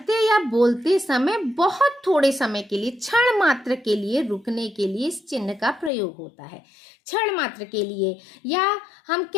या बोलते समय बहुत थोड़े समय के लिए, क्षण मात्र के लिए रुकने के लिए इस चिन्ह का प्रयोग होता है। क्षण मात्र के लिए, या हम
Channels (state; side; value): drops out; right; at 5.9 s